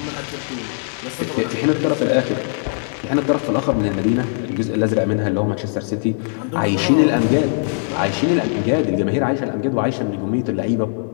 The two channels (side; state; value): right; silent; digital silence